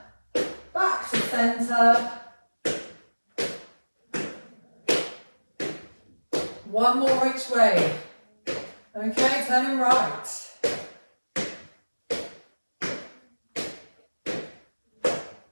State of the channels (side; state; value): both; inverted; correlation -1.00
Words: Back to centre. One more each way. Okay, turning right.